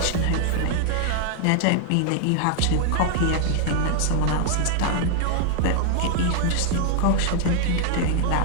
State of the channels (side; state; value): both; different; correlation 0.00